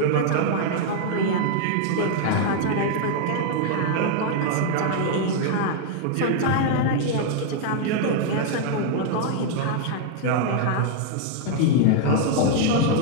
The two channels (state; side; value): different; both; correlation 0.00